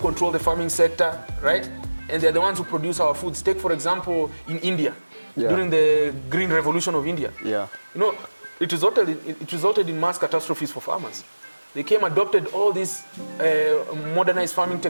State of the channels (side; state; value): both; inverted; correlation -1.00